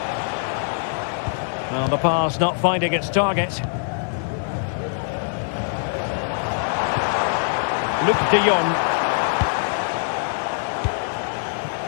Well, the pass not finding its target. Luc de Jong.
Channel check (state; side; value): silent; right; digital silence